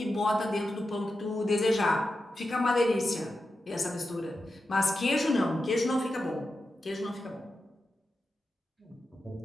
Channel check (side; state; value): both; normal; correlation 0.90